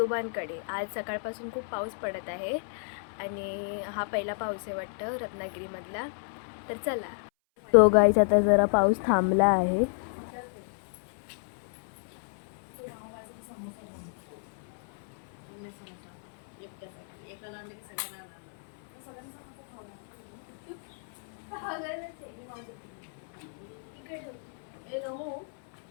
आज सकाळपासून खूप पाऊस पडत आहे आणि हा पहिला पाऊस आहे वाटतं रत्नागिरीमधला. तर चला. तो गाईज आता जरा पाऊस थांबला आहे.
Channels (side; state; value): right; silent; 57 dB below the other